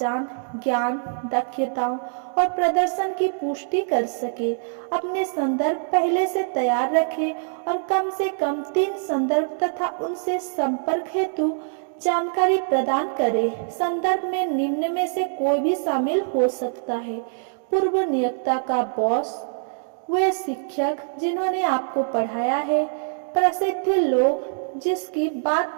ज्ञान, दक्षताओं और प्रदर्शन की पुष्टि कर सके। अपने संदर्भ पहले से तैयार रखें और कम से कम 3 संदर्भ तथा उनसे संपर्क हेतु जानकारी प्रदान करें। संदर्भ में निम्न में से कोई भी शामिल हो सकता है: पूर्व नियोक्ता का बॉस, वे शिक्षक जिन्होंने आपको पढ़ाया है, प्रसिद्ध लोग जिसकी बात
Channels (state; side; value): silent; left; digital silence